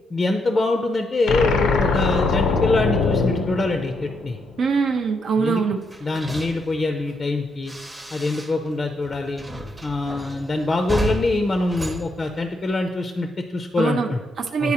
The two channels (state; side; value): normal; both; correlation 0.78